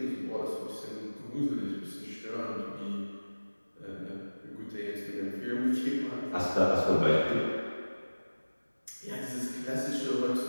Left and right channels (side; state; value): both; inverted; correlation -1.00